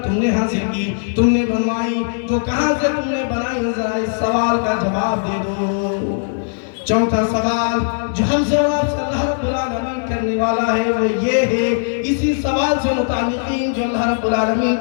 تم نے حاصل کی، تم نے بنوائی، وہ کہاں سے تم نے بنائی، ذرا اس سوال کا جواب دے دو۔ چوتھا سوال جو ہم سے اور آپ سے اللہ رب العالمین کرنے والا ہے وہ یہ ہے، اسی سوال سے متعلقین جو اللہ رب العالمین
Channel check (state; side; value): silent; right; digital silence